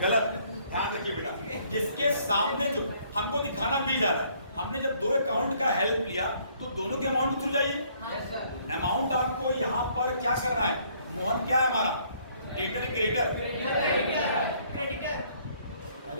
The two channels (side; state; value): both; inverted; correlation -0.64